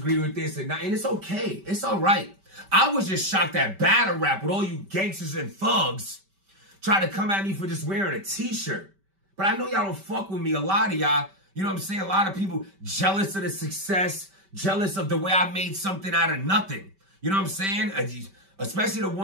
with this, and it's okay. It's all right. I was just shocked at battle rap with all you gangsters and thugs trying to come at me for just wearing a t-shirt. But I know y'all don't fuck with me. A lot of y'all, you know what I'm saying? A lot of people jealous of the success, jealous of the way I made something out of nothing. You know what I'm saying? Especially the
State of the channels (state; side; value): late; left; 5.2 ms